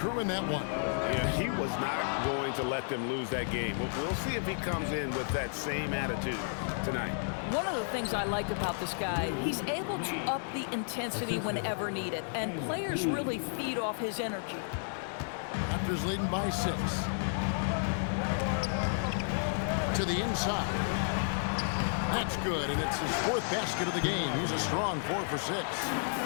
in that one. Yeah, he was not going to let them lose that game. We'll see if he comes in with that same attitude tonight. One of the things I like about this guy, he's able to up the intensity whenever needed, and players really feed off his energy. Raptors leading by 6. To the inside. That's good, and it's his 4th basket of the game. He's a strong 4 for 6.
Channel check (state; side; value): silent; right; digital silence